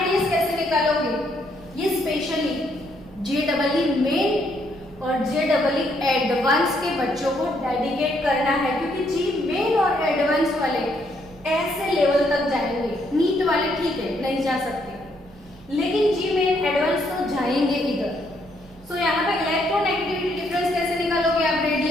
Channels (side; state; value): both; normal; correlation 0.72